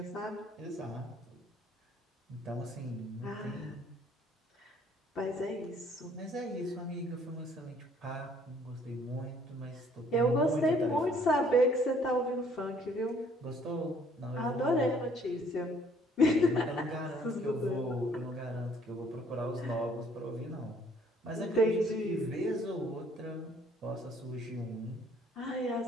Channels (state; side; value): normal; both; correlation 0.61